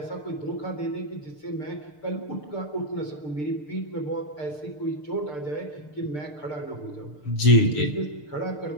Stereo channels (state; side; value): late; right; 6.7 ms